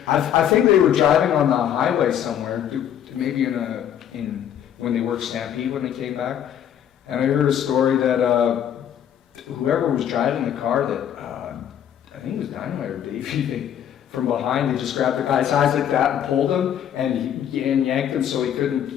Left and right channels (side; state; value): right; quieter; 9.7 dB